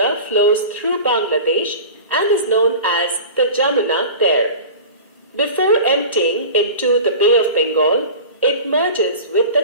flows through Bangladesh and is known as the Jamuna there. Before emptying into the Bay of Bengal, it merges with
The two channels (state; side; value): inverted; both; correlation -0.35